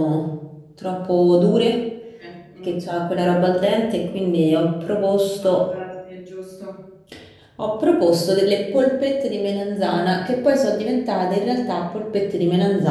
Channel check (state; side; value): identical; both; correlation 1.00